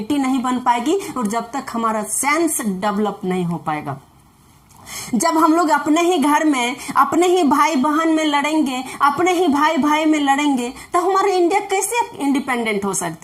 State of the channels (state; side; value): identical; both; correlation 1.00